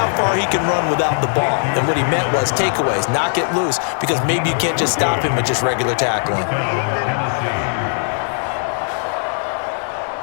far he can run without the ball. And what he meant was takeaways, knock it loose, because maybe you can't just stop him at just regular tackling.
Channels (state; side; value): silent; right; 67 dB below the other